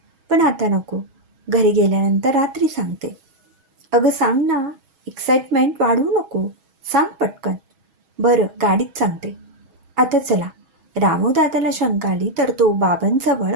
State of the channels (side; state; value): left; late; 6.2 ms